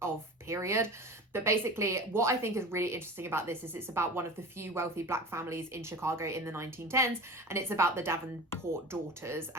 of period. But basically what I think is really interesting about this is it's about one of the few wealthy black families in Chicago in the 1910s, and it's about the Davenport daughters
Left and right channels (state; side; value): normal; both; correlation 0.33